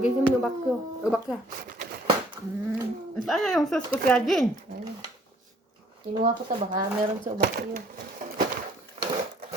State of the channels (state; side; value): normal; both; correlation 0.60